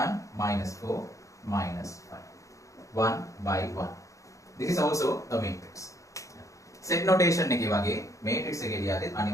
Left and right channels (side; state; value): right; late; 0.15 ms